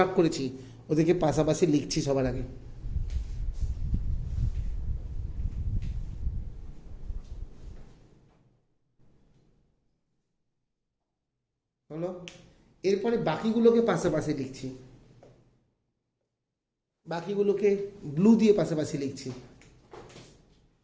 করেছি ওদেরকে পাশাপাশি লিখছি সবার আগে। হলো? এরপরে বাকিগুলোকে পাশাপাশি লিখছি। বাকিগুলোকে ব্লু দিয়ে পাশাপাশি লিখছি।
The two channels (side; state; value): both; identical; correlation 1.00